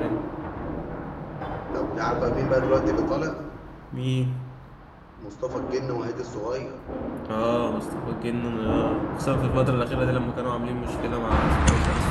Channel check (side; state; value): both; identical; correlation 1.00